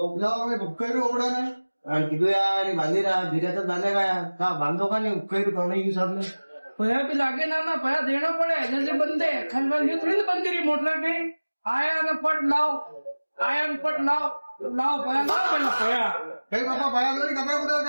ही रोक रहा है। किधर यार बांधेगा धीरे तो बांधेगा यार, कहा बांधो का नहीं हुक्का ही तो नहीं यूज आपने। पया भी लागे ना पया देना पड़े जैसे बंदे खलबल ये थोड़ी बंदी रही मोटर के आया ना पट लाओ, आया न पट लाओ लाओ पया लाओ पहला पया कहीं पापा भया तो नहीं कपड़े उधर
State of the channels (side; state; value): both; inverted; correlation -1.00